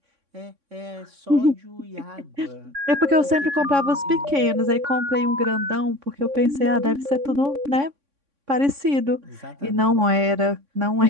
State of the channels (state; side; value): late; left; 3.6 ms